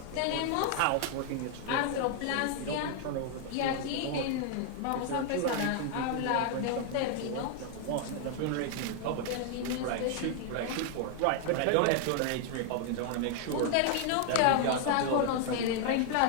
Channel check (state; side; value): different; both; correlation 0.00